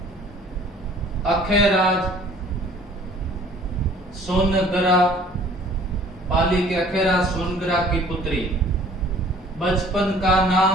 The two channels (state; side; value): normal; both; correlation 0.53